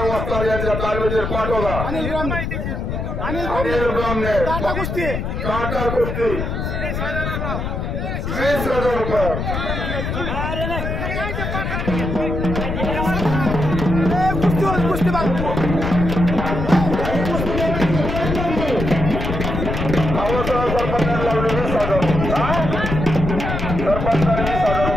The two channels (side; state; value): left; noise; rumble, 3 dB below the sound